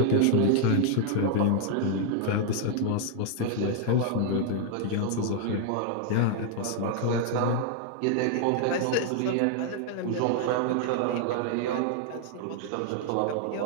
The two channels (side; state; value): both; different; correlation 0.00